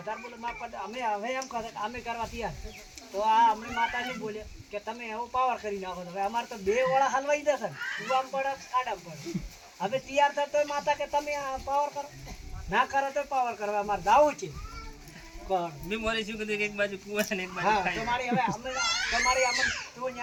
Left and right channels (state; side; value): identical; both; correlation 1.00